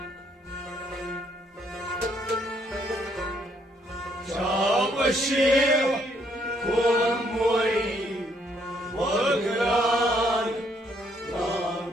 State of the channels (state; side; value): normal; both; correlation 0.70